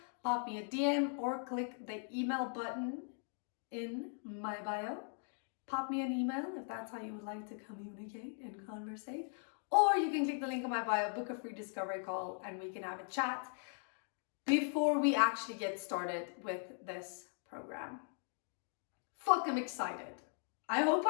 pop me a DM, or click the email button in my bio. Pop me an email if that's how you would like to communicate and conversate. Or you can click the link in my bio, book a free discovery call, and we can have a chat before we actually get started with this program. Fuck, I'm excited. I hope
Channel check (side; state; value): right; silent; 52 dB below the other